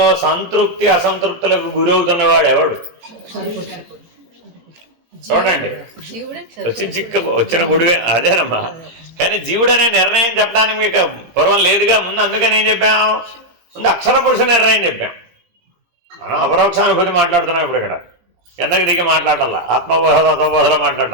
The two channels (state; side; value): late; left; 17 ms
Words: సంతృప్తి అసంతృప్తులకు గురవుతున్నవాడు ఎవడు? చూడండి, వచ్చిన గుడివే అదేనమ్మా. కానీ జీవుడు అనే నిర్ణయం చెప్పడానికి మీకు పూర్వం లేదుగా. ముందు అందుకని ఏం చెప్పాం? ముందు అక్షర పురుష నిర్ణయం చెప్పాం. మనం అపరోక్షానుభూతి మాట్లాడుతున్నాం ఇప్పుడు. ఇక్కడ కిందకి దిగి మాట్లాడాల, ఆత్మబోధ తత్వబోధలో